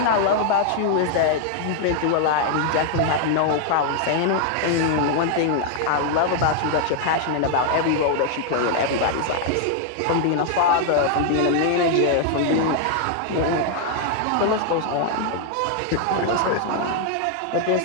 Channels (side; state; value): both; different; correlation 0.00